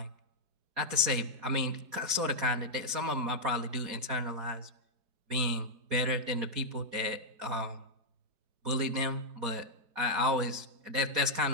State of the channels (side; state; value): left; late; 4.2 ms